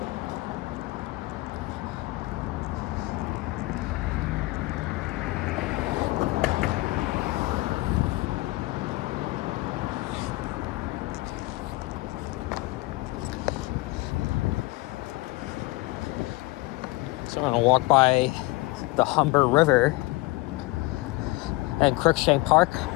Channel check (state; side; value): quieter; right; 21.4 dB